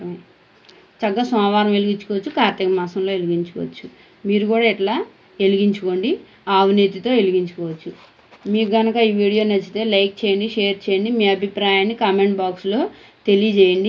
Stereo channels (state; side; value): identical; both; correlation 1.00